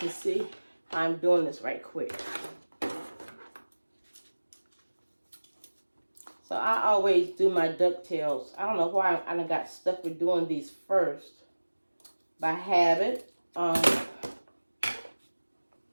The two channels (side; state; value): both; inverted; correlation -1.00